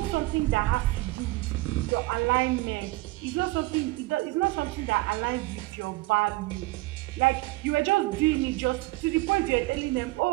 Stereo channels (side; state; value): left; quieter; 20.8 dB